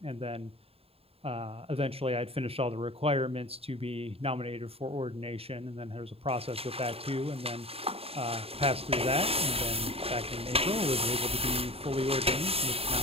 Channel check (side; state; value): left; late; 0.28 ms